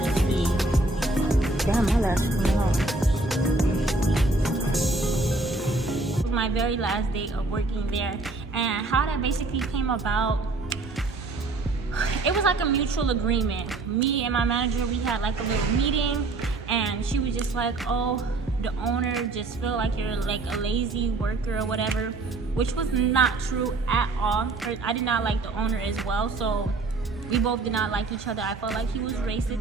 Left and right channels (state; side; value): quieter; left; 3.2 dB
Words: just be damn, my last day It was my very last day of working there. And how that basically came about, it was like a mutual agreement. Me and my manager, we had like a little meeting, and she was just like, oh, the owner just feel like you're like a lazy worker or whatever, which was not true at all. I did not like the owner as well, so we both did not like each other. I felt like he was racist.